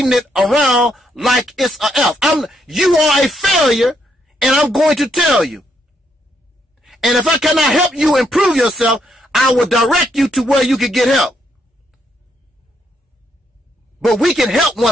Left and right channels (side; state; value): both; normal; correlation 0.75